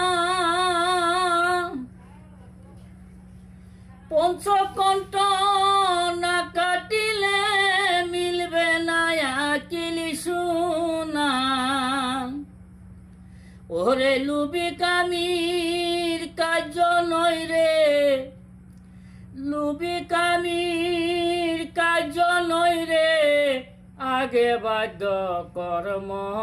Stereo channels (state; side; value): identical; both; correlation 1.00